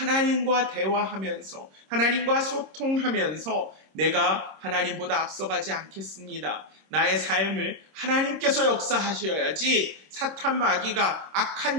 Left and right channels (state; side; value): late; left; 26 ms